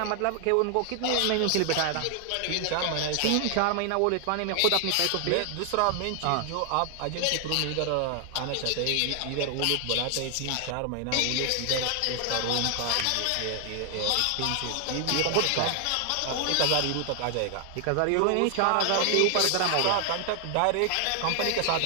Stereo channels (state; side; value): different; both; correlation 0.00